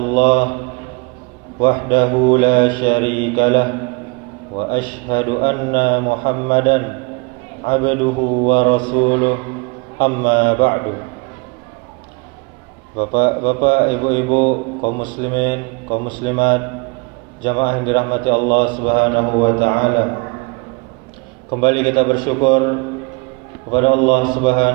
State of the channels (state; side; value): quieter; left; 30.6 dB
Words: wahdahu la syarika lah wa asyhadu anna Muhammadan abduhu wa rasuluh. Amma ba'du. Bapak-bapak, ibu-ibu, kaum muslimin, kaum muslimat, jamaah yang dirahmati Allah Subhanahu wa taala. Kembali kita bersyukur kepada Allah